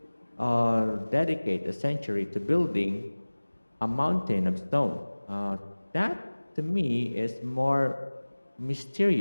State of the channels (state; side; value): inverted; both; correlation -1.00